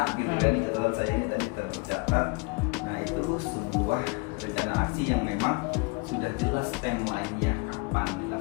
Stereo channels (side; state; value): right; quieter; 28.6 dB